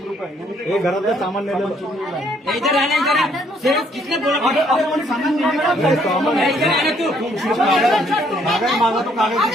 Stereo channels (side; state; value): both; normal; correlation 0.67